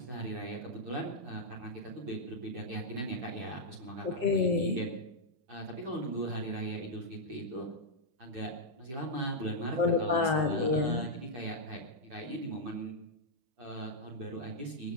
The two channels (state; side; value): late; left; 7.7 ms